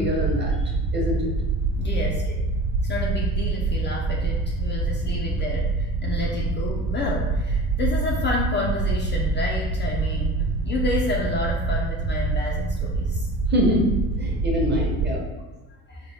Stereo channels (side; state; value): both; normal; correlation 0.39